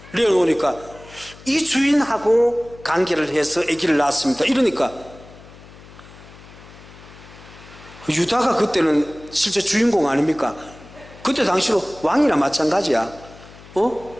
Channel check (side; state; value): left; noise; hum, 20 dB below the sound